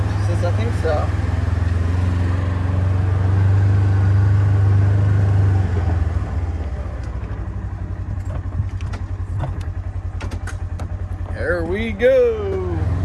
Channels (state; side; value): identical; both; correlation 1.00